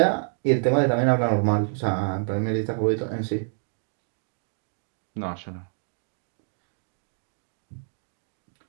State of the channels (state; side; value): silent; left; digital silence